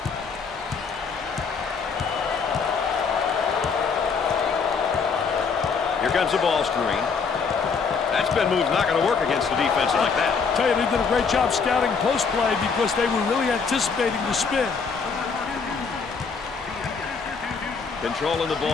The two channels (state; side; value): quieter; right; 5.4 dB